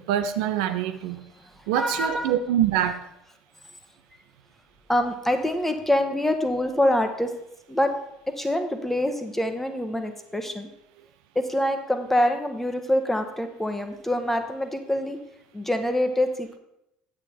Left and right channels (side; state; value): both; normal; correlation 0.70